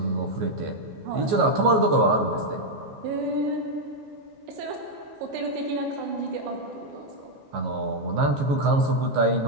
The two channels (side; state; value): left; late; 14 ms